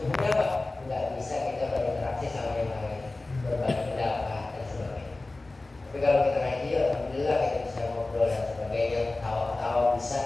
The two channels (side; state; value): right; quieter; 3.1 dB